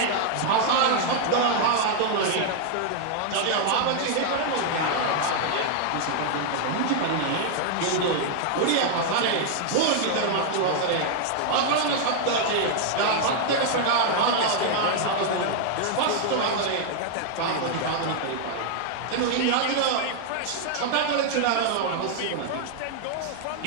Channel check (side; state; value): both; different; correlation 0.00